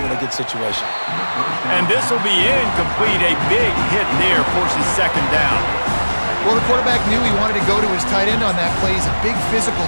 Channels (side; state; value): both; inverted; correlation -1.00